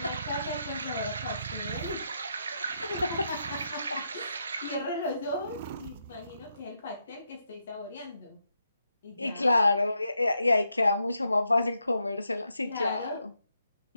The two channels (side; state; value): both; inverted; correlation -0.82